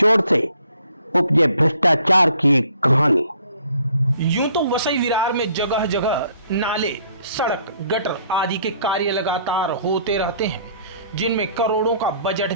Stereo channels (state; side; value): inverted; both; correlation -0.61